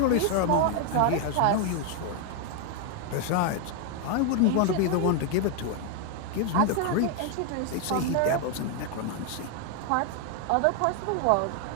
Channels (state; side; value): different; both; correlation 0.01